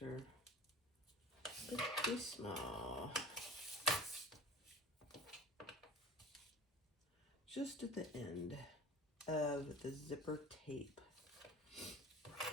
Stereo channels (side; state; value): both; normal; correlation 0.38